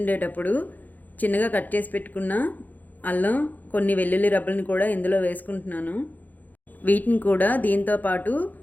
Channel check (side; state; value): right; late; 0.083 ms